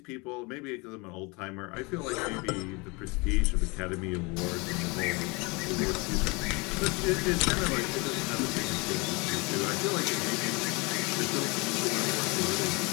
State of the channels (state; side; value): quieter; right; 27.5 dB